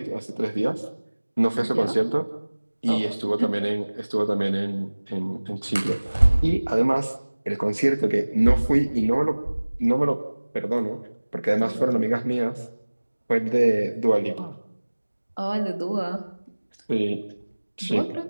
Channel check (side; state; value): both; inverted; correlation -1.00